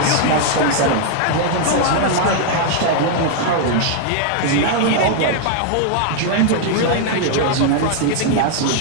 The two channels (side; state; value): both; different; correlation 0.00